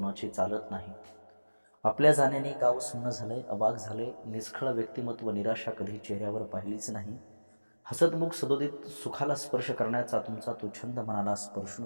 चालत नाही. आपल्या जाण्याने गाव सुन्न झालंय, अवाक झालंय. निष्खळ व्यक्तिमत्व, निराशा कधी चेहऱ्यावर पाहिलीच नाही. हसतमुख सदोदित सुखाला स्पर्श करण्याचा तुमचा तो छंद मनाला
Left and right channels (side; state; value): both; inverted; correlation -1.00